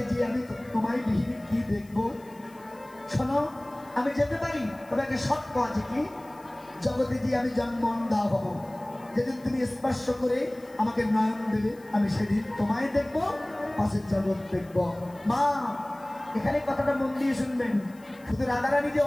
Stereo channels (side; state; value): left; noise; hiss, 28 dB below the sound